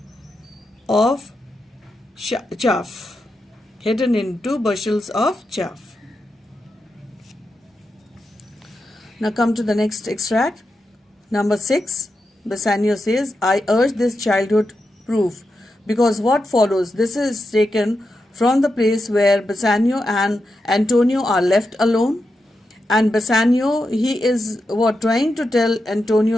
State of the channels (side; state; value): both; normal; correlation 0.87